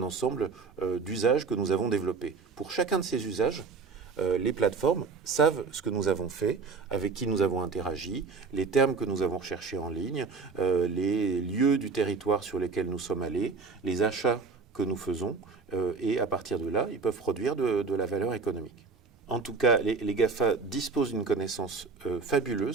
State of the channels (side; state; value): left; quieter; 4.7 dB